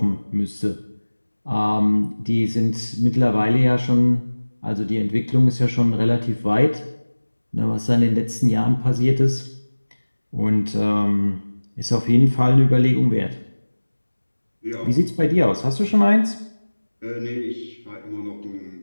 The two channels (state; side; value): inverted; both; correlation -1.00